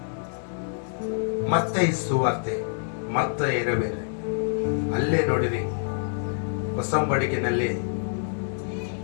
ಮತ್ತೆ ಸುವಾರ್ತೆ ಮತ್ತೆ ಇರಬೇರೆ ಅಲ್ಲೇ ನೋಡಿರಿ, ಹೊಸಂಬಡಿಕೆನಲ್ಲಿ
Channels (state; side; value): silent; right; digital silence